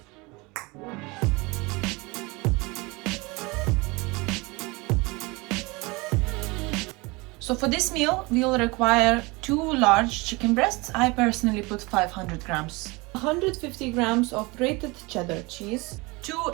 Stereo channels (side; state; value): left; quieter; 25.0 dB